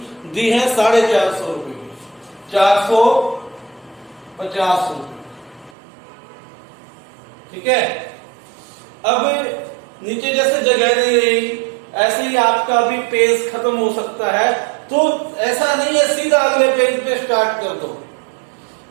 दी है, 450 रुपए की, 450 रुपए। ठीक है। अब नीचे जैसे जगह नहीं रही, ऐसे ही आपका भी पेज खत्म हो सकता है, तो ऐसा नहीं है सीधा अगले पेज पे स्टार्ट कर दो।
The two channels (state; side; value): drops out; left; at 5.8 s